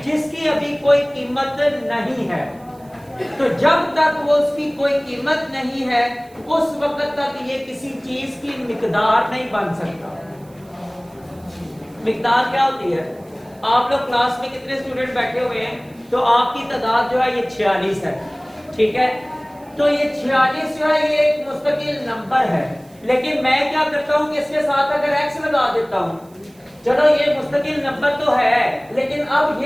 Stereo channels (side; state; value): right; noise; hiss, 29 dB below the sound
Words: جس کی ابھی کوئی قیمت نہیں ہے، تو جب تک وہ اس کی کوئی قیمت نہیں ہے اس وقت تک یہ کسی چیز کی مقدار نہیں بن سکتا۔ مقدار کیا ہوتی ہے؟ آپ لوگ کلاس میں کتنے اسٹوڈنٹ بیٹھے ہوئے ہیں؟ تو آپ کی تعداد جو ہے یہ 46 ہے، ٹھیک ہے؟ تو یہ 46 جو ہے یہ ایک مستقل نمبر ہے، لیکن میں کیا کرتا ہوں کہ اس کے ساتھ اگر ایکس لگا دیتا ہوں، چلو یہ مستقل نمبر تو ہے لیکن اب